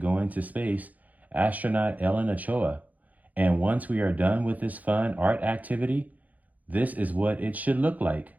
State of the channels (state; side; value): late; left; 0.078 ms